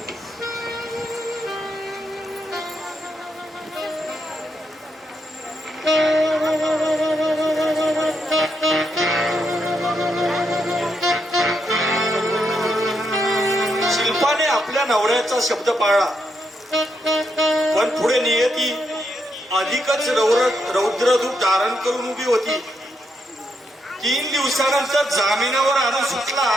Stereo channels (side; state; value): both; normal; correlation 0.80